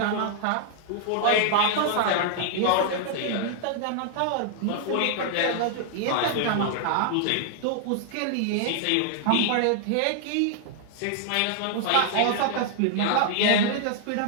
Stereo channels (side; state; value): both; different; correlation -0.01